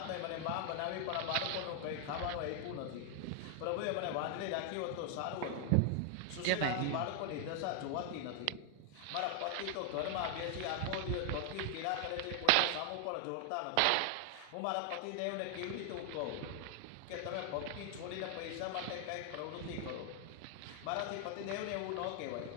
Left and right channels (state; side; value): different; both; correlation 0.00